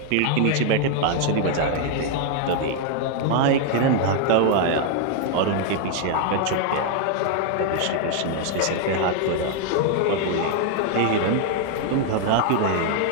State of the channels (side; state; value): both; different; correlation 0.00